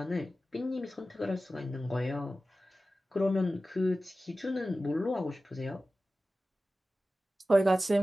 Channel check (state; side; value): normal; both; correlation 0.95